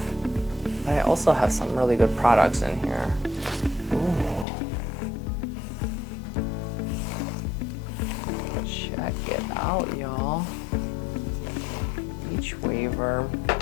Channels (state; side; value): drops out; right; at 4.5 s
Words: But I also have some really good products in here. Ooh. Check it out, y'all. Beachwaver.